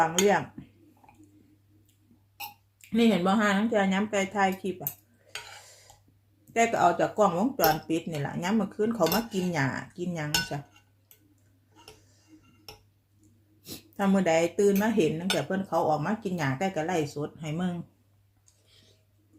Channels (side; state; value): both; identical; correlation 1.00